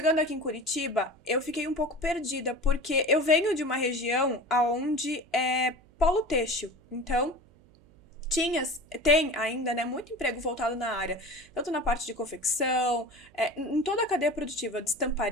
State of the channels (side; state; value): right; noise; hum, 28 dB below the sound